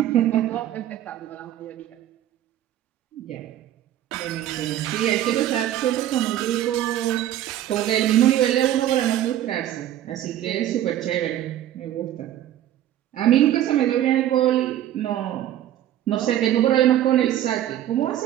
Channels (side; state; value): left; quieter; 12.2 dB